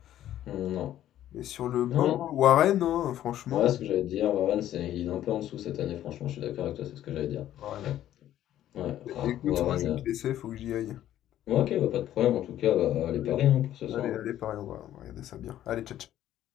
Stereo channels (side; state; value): right; quieter; 12.3 dB